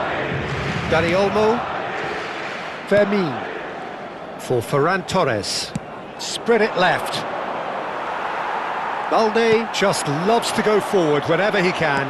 Dani Olmo. Fermin. For Ferran Torres. Spread it left. Balde just loves to go forward whenever he can.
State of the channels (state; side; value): identical; both; correlation 1.00